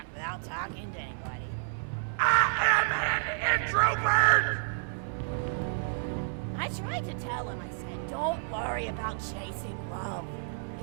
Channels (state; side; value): silent; left; 58 dB below the other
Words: without talking to anybody. I am an introvert! I tried to tell him, I said, don't worry about chasing love.